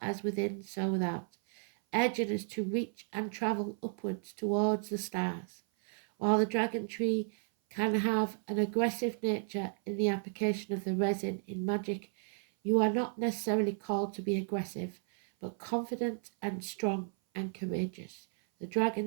within, so without, urging us to reach and travel upwards towards the stars. While the dragon tree can have an aggressive nature in the application of the resin in magic, you are not necessarily called to be aggressive, but confident and strong and courageous. The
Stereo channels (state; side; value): silent; left; 55 dB below the other